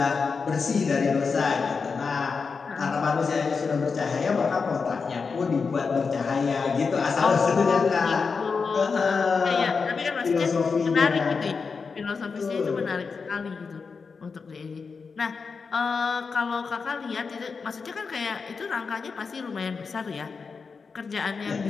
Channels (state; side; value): quieter; right; 5.1 dB